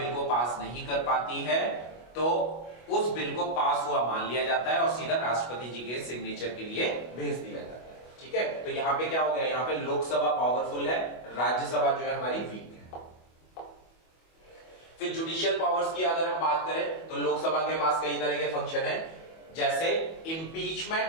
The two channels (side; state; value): right; late; 25 ms